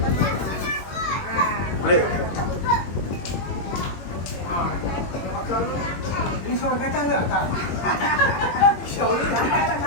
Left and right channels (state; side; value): late; right; 21 ms